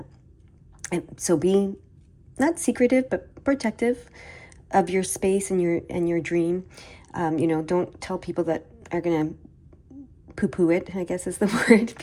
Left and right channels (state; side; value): identical; both; correlation 1.00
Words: And so be not secretive, but protective of your space and your dream. Don't tell people that are going to poo-poo it, I guess is the word